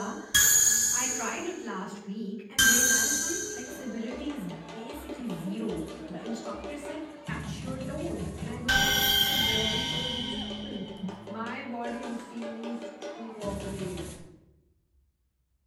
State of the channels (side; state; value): both; identical; correlation 1.00